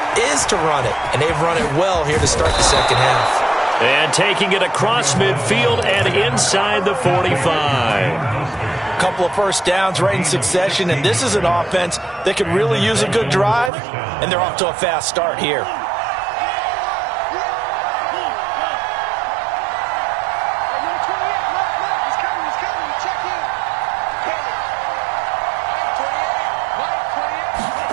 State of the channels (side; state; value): left; drops out; at 13.7 s